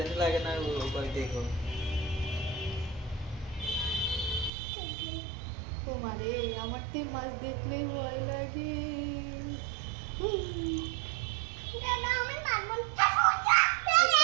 লাগে না, ওই দেখো। ও মারে, আমার তো এই মাছ দেখলেই ভয় লাগে।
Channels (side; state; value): left; drops out; at 4.5 s